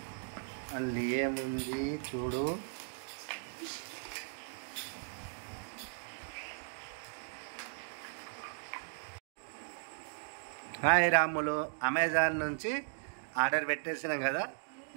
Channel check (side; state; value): left; silent; digital silence